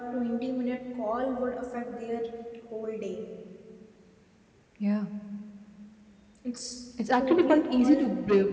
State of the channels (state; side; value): identical; both; correlation 1.00